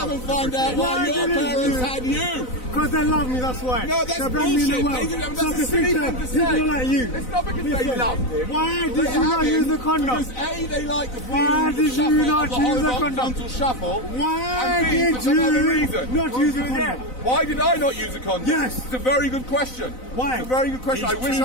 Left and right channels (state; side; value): late; right; 4.0 ms